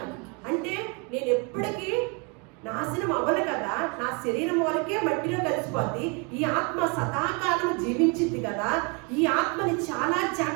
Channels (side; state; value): left; quieter; 32.3 dB